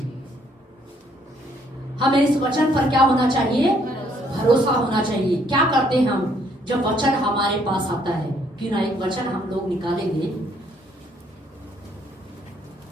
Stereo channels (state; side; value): normal; both; correlation 0.67